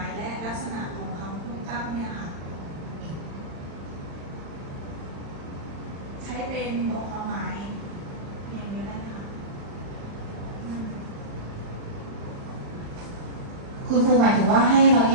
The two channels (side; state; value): left; late; 35 ms